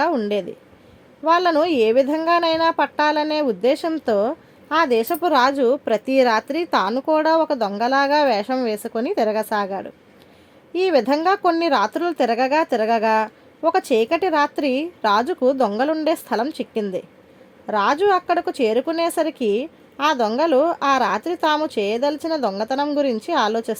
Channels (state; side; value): identical; both; correlation 1.00